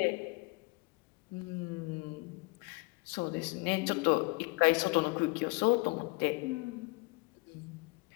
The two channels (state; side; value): quieter; right; 26.9 dB